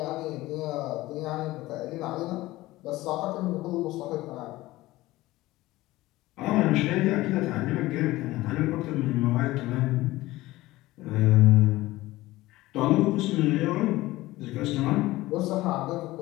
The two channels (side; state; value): right; quieter; 18.0 dB